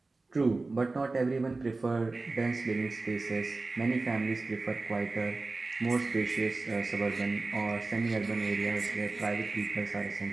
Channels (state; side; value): quieter; left; 3.5 dB